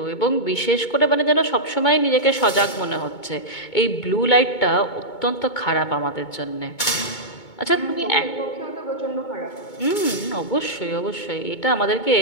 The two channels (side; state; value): right; late; 2.2 ms